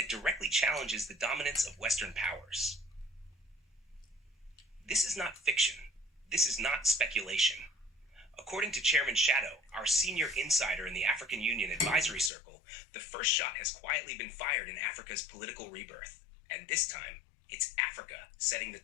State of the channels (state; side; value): drops out; right; at 12.3 s